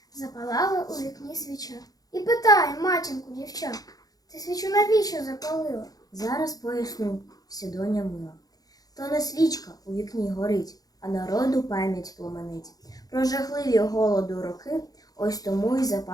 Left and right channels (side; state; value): right; late; 0.18 ms